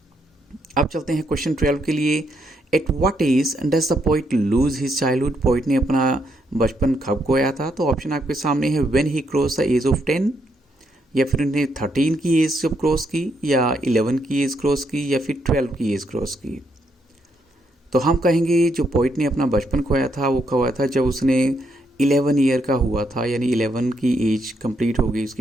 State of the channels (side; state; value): both; normal; correlation 0.76